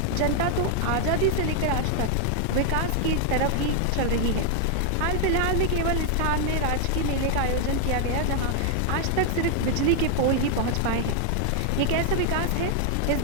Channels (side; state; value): both; different; correlation 0.00